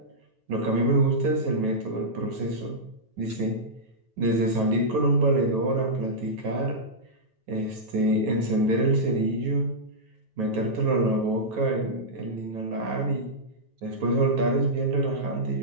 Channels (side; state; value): left; late; 9.3 ms